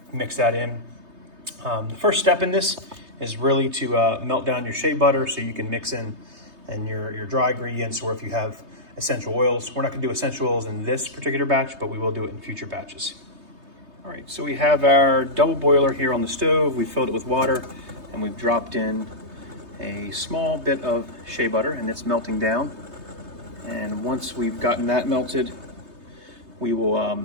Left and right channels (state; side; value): late; left; 3.2 ms